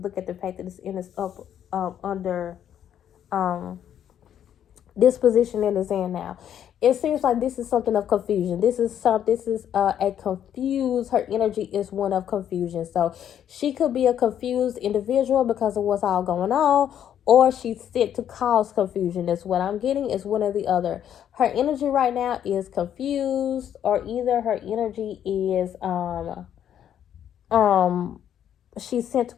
at the fact that it's in this up under this position that it's in now. It seems like this is something of confusion. This is a confused. Her energy is one of confusion. So she could be a confused individual because of what's all going on, or she's sent to cause confusion. That's what I'm getting. Is one or the other. Her energy right now is confused, or either her energy is she's sent to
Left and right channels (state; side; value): quieter; right; 9.8 dB